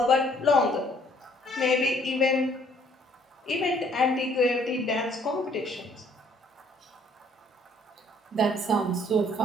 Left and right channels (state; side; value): normal; both; correlation 0.62